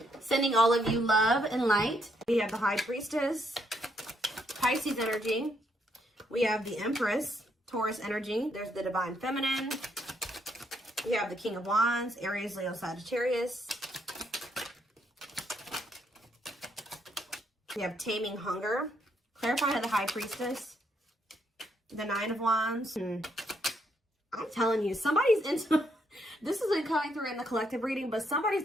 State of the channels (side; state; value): both; normal; correlation 0.74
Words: Sending all of you love and light. We have the High Priestess, Pisces energy. We have the Empress, Taurus energy. There's the Divine Feminine. We have the King of Wands, Aries, Leo, Sagittarius. We have Taming Hunger. Clarify the High Priestess. The Nine of Wands. I'm telling you, somebody's into, this isn't coming through in the collective reading, but